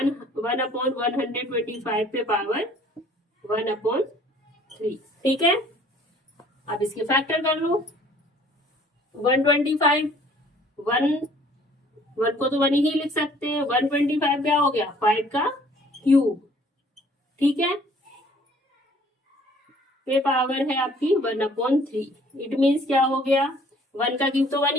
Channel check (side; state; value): both; normal; correlation 0.56